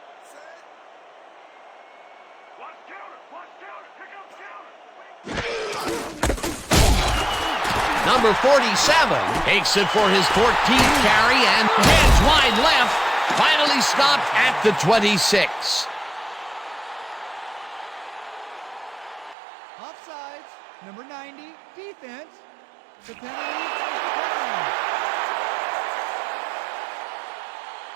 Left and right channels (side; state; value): left; drops out; at 19.4 s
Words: Number 47 takes it for his 14th carry and heads wide left. Finally stopped at the 26. Offsides. Number 90, defense. The penalty is declined.